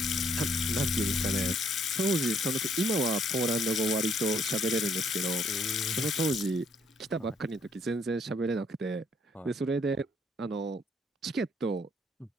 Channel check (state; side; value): normal; both; correlation 0.67